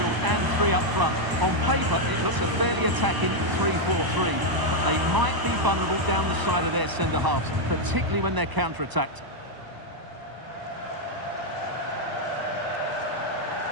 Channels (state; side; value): late; left; 1.0 ms